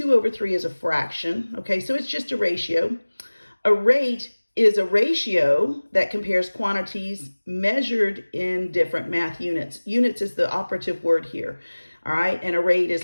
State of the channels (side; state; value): both; inverted; correlation -1.00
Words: is a fraction, okay? So it's just a ratio. A rate is a ratio that compares quantities measured in different math units. Units is the operative word here. All right, and a rate is